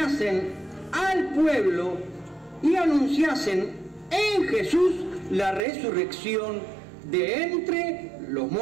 al pueblo y anunciasen en Jesús la resurrección de entre los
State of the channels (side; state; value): left; drops out; at 5.7 s